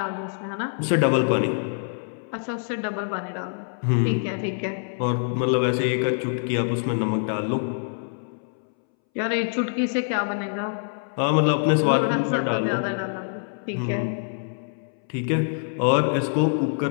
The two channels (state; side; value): silent; right; 62 dB below the other